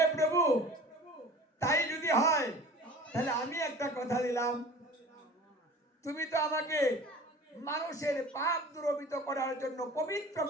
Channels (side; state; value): both; normal; correlation 0.42